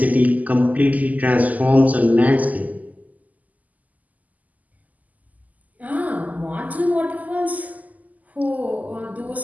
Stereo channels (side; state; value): left; late; 0.078 ms